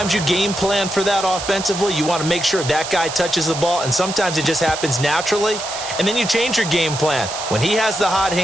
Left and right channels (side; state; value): right; noise; hiss, 7 dB below the sound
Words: you game plan for that offensively. You want to make sure that guy touches the ball, and sometimes it just happens naturally. And then you change your game plan. When he has the hot